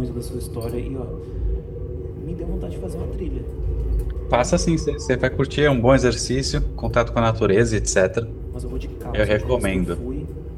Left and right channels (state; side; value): identical; both; correlation 1.00